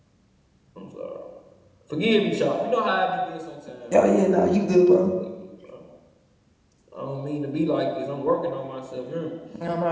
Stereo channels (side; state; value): both; identical; correlation 1.00